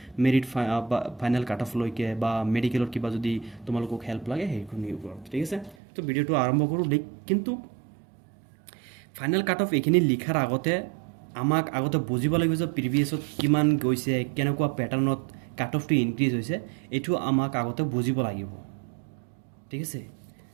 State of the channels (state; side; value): drops out; left; at 5.8 s